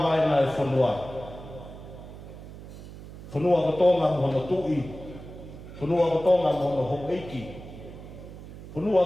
e whunua. Whanua ko tōnga mo no tui, Punua ko tonga mo no hong eiki. Punua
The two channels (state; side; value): noise; right; hum, 14 dB below the sound